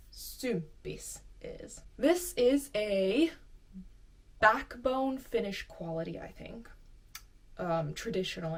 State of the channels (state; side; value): identical; both; correlation 1.00